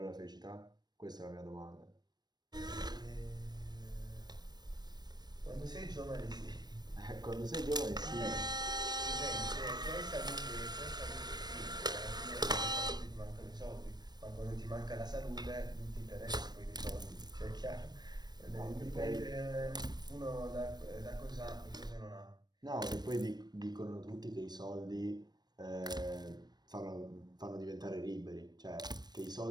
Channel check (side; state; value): left; late; 0.20 ms